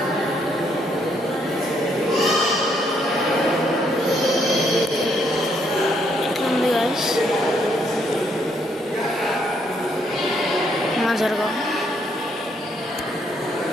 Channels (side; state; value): both; normal; correlation 0.72